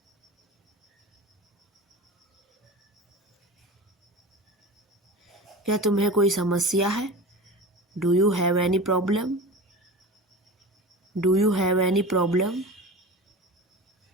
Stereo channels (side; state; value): both; normal; correlation 0.32